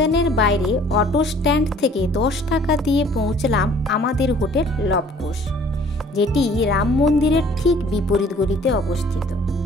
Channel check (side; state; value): both; normal; correlation 0.54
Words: বাইরে অটো স্ট্যান্ড থেকে 10 টাকা দিয়ে পৌঁছলাম আমাদের হোটেল লবকুশ, যেটি রাম মন্দিরের ঠিক বিপরীত গলিতে অবস্থিত।